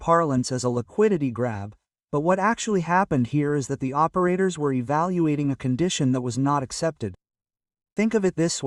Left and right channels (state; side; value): identical; both; correlation 1.00